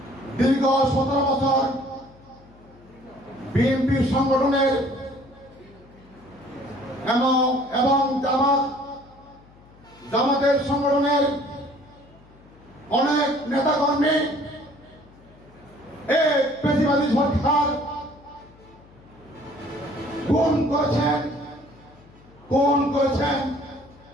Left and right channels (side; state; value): left; noise; hum, 25 dB below the sound